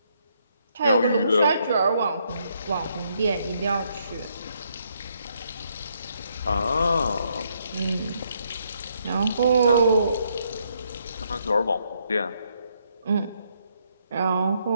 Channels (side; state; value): both; inverted; correlation -0.73